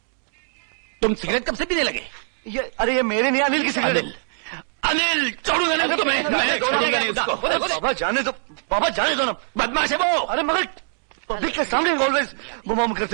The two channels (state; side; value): silent; left; digital silence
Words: तुम सिगरेट कब से पीने लगे? अरे ये मेरे नहीं, अनिल की सिगरेट। अनिल छोड़ूंगा नहीं उसको, मैं छोड़ूंगा नहीं उसको। बाबा जाने दो, बाबा जाने दो ना। बदमाश है वो। अरे मगर पब्लिक के सामने ऑलवेज बुम